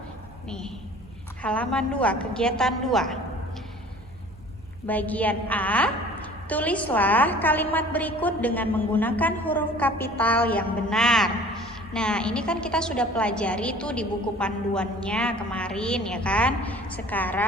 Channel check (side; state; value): both; normal; correlation 0.47